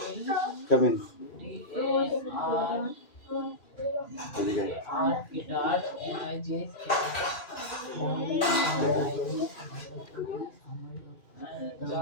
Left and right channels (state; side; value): late; right; 2.4 ms